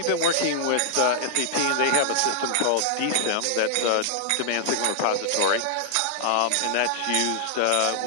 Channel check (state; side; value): different; both; correlation -0.01